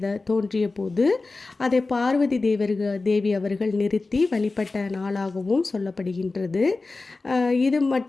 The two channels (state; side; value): quieter; right; 3.6 dB